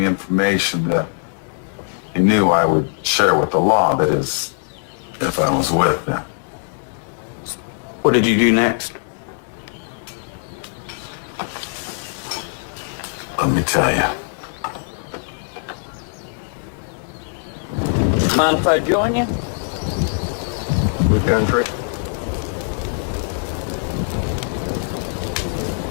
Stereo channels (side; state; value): right; silent; digital silence